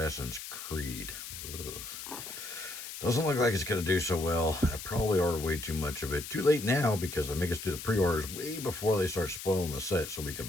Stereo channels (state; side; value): noise; left; hiss, 9 dB below the sound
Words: Creed. Ugh. Doesn't look like it's going to do so well. I probably ordered way too much of it. Too late now because they make us do the pre-orders way before they start spoiling the set so we can